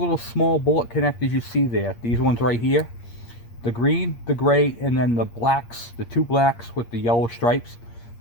small bullet connectors you see there, these ones right here, the green, the gray, and then the blacks, the two blacks with the yellow stripes,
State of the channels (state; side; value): late; right; 8.6 ms